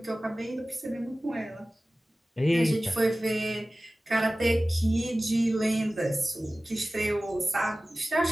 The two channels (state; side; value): normal; both; correlation 0.97